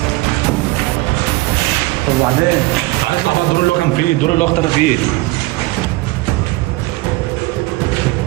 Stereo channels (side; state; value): left; quieter; 20.8 dB